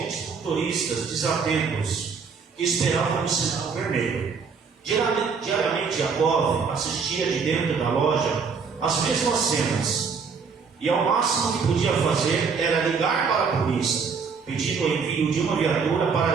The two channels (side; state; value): left; quieter; 5.5 dB